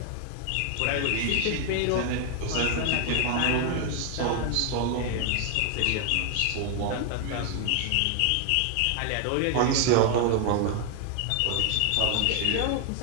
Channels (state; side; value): different; both; correlation 0.00